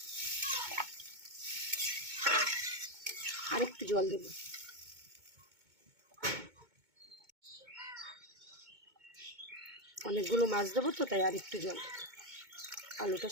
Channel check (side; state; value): left; late; 2.2 ms